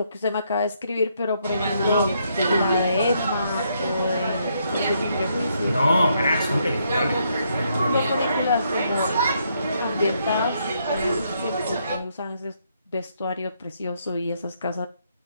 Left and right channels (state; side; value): inverted; both; correlation -0.74